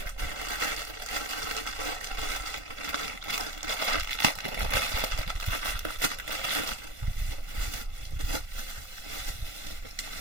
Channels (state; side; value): late; left; 1.5 ms